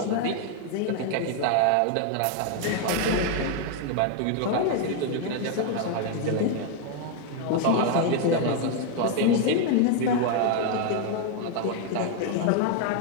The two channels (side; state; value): both; different; correlation 0.00